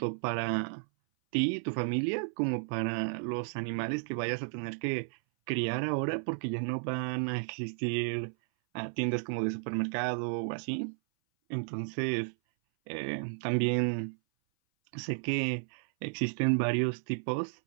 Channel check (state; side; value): silent; left; 56 dB below the other